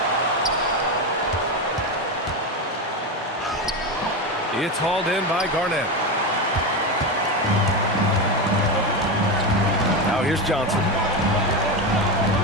It's hauled in by Garnett. Now here's Johnson.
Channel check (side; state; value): both; normal; correlation 0.16